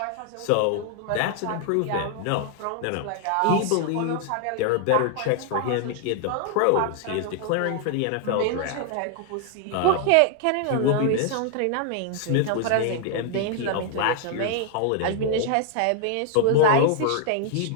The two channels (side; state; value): both; different; correlation 0.00